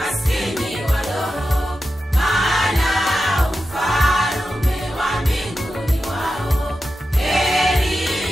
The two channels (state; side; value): normal; both; correlation 0.91